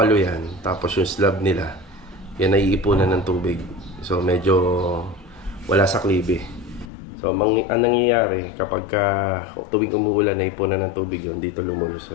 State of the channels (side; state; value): right; drops out; at 6.9 s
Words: yan. Tapos yung slab nila, yan ay iipunan ng tubig. So medyo wala sa klibe. So ang nangyayari kapag tuwing umuulan ay ipunan ng tubig yun, dito